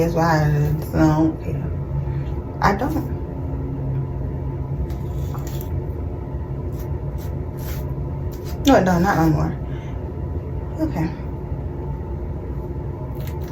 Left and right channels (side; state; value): both; identical; correlation 1.00